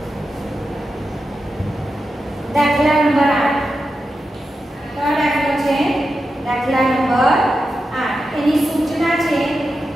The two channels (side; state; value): both; normal; correlation 0.90